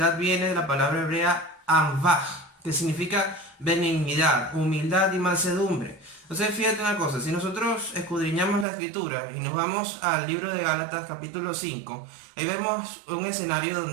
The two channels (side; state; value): left; drops out; at 8.7 s